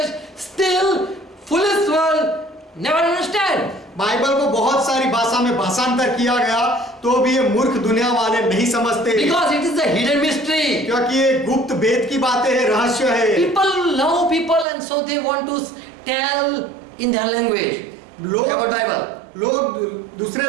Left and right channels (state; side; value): drops out; left; at 14.7 s